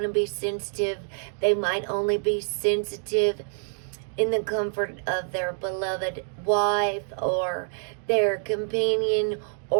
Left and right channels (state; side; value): silent; left; digital silence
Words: to be sensitive. They might only be sensitive in the comfort of their beloved wife or their companion